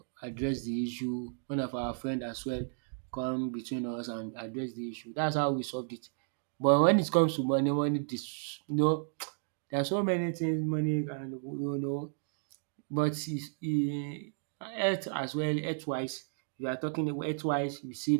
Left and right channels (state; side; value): silent; left; digital silence